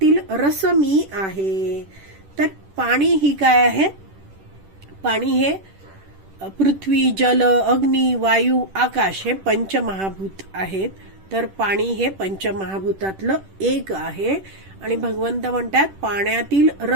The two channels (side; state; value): left; late; 10 ms